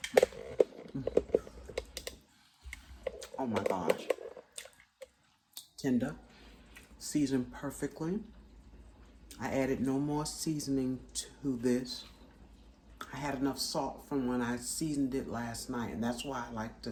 Oh my gosh. Tender. Seasoned perfectly. I added no more seasoning to this. I had enough salt from when I seasoned it last night, and that's why I like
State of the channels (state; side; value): identical; both; correlation 1.00